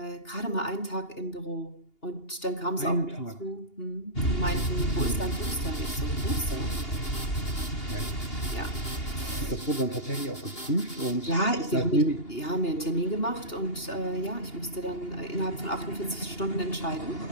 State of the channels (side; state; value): right; late; 2.8 ms